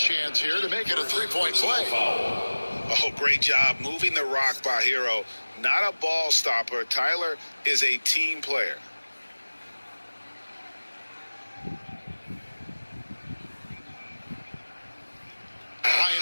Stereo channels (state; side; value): inverted; both; correlation -1.00